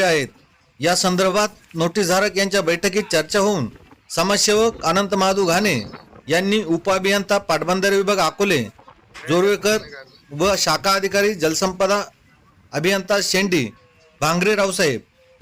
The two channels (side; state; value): both; identical; correlation 1.00